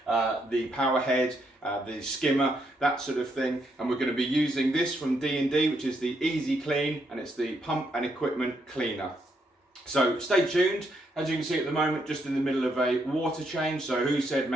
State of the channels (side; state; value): both; normal; correlation 0.76